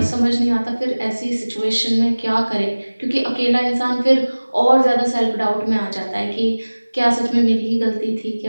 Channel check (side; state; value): both; inverted; correlation -1.00